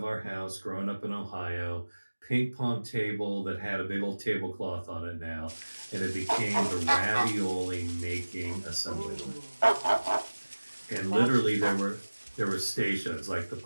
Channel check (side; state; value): both; inverted; correlation -1.00